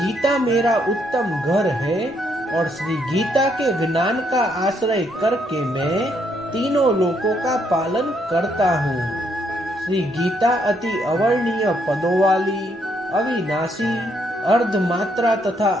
मेरा उत्तम घर है और श्री गीता के ज्ञान का आश्रय करके मैं तीनों लोकों का पालन करता हूँ। श्री गीता अति अवर्णीय पदों वाली, अविनाशी, अर्धमात्रा तथा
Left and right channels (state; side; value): normal; both; correlation 0.73